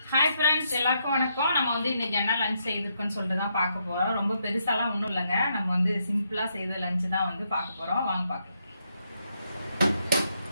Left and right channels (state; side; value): inverted; both; correlation -0.77